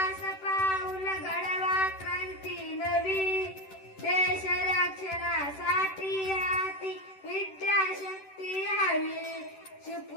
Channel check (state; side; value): late; right; 10 ms